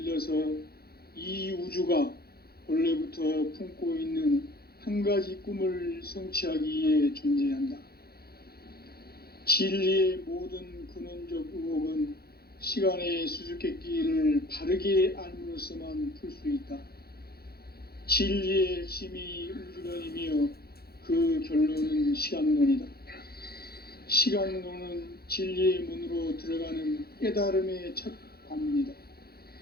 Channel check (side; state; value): right; late; 0.46 ms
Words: 이 우주가 원래부터 품고 있는 한 가지 꿈을 성취하기 위해 존재한다. 진리의 모든 근원적 의혹은 시간의 수수께끼를 바르게 알므로써만 풀 수 있다. 진리의 핵심이 우주론이며 그 결론은 시간론이다. 시간론은 진리의 문으로 들어가는 깨달음의 첫 관문이다.